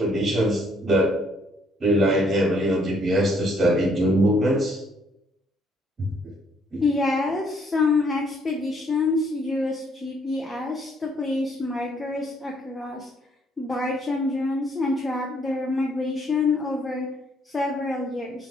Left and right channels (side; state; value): both; normal; correlation 0.67